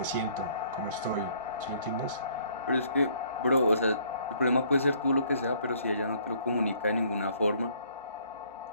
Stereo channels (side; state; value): both; inverted; correlation -0.62